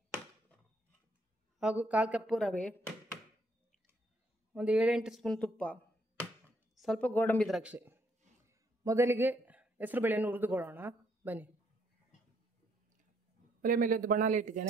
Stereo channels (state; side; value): normal; both; correlation 0.70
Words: ಹಾಗೂ 1/4 ಕಪ್ ರವೆ, ಒಂದು 7-8 ಸ್ಪೂನ್ ತುಪ್ಪ, ಸ್ವಲ್ಪ ಗೋಡಂಬಿ ದ್ರಾಕ್ಷಿ. ಮೊದಲಿಗೆ ಹೆಸರುಬೇಳೆಯನ್ನು ಹುರಿದುಕೊಳ್ಳೋಣ ಬನ್ನಿ. ಒಲೆ ಮೇಲೆ ಒಂದು ಬಾಣಲೆ